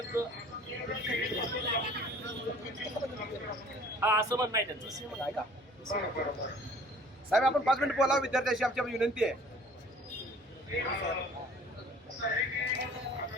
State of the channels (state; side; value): normal; both; correlation 0.51